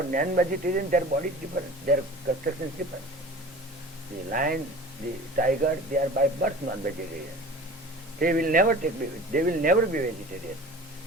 non vegetarian their body is different, their construction is different. The lion, the tiger, they are by birth non vegetarian, they will never be vegetarian,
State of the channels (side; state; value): both; normal; correlation 0.40